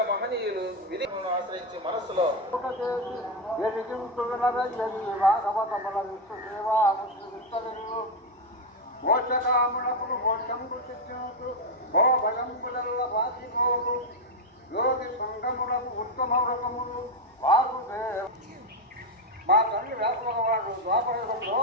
మహనీయులు విధిని ఆశ్రయించి మనస్సులో మోక్షకామునకులు మోక్షంకు చిత్తునకు భో భయంబులల్ల వాసిపోవు యోగి సంగములకు ఉత్తమ వ్రతములు వాసుదేవ. మా తల్లి వ్యాసభగవాడు ద్వాపరయుగంలో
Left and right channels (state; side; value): normal; both; correlation 0.06